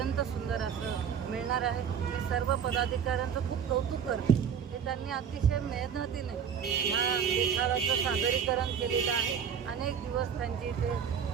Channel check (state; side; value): quieter; left; 7.7 dB